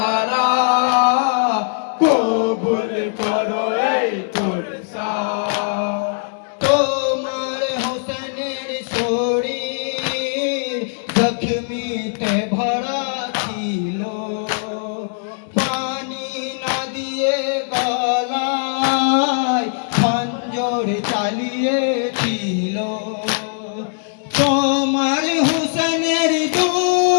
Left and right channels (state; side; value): silent; right; digital silence